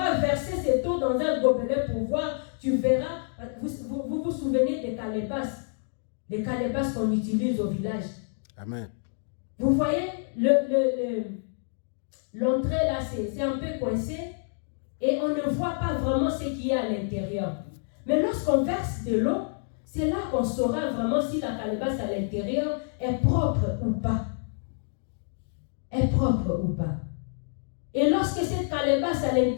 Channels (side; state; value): right; silent; digital silence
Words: verser cette eau dans un gobelet pour voir, tu verras, vous souvenez des calebasses. Les calebasses qu'on utilise au village. Amen. Vous voyez, l'entrée là, c'est un peu coincé et on ne voit pas vraiment ce qu'il y a à l'intérieur. Mais lorsqu'on verse de l'eau, c'est là qu'on saura vraiment si la calebasse à l'intérieur est propre ou pas. Est propre ou pas. Et lorsque cette calebasse à